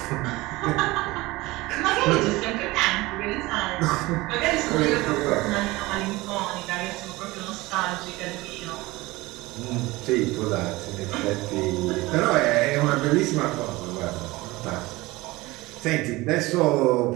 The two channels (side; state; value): left; quieter; 20.7 dB